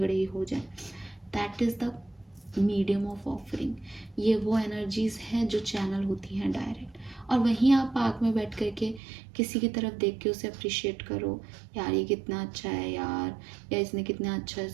ही हो जाए। That is the medium of offering. ये वो एनर्जीज हैं जो चैनल होती हैं डायरेक्ट, और वहीं आप पार्क में बैठ करके किसी की तरफ देख के उसे अप्रिशिएट करो, यार ये कितना अच्छा है यार, या इसने कितना अच्छा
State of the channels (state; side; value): drops out; left; at 9.0 s